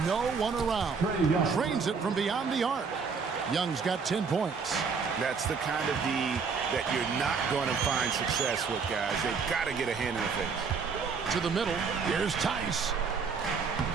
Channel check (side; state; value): left; quieter; 5.4 dB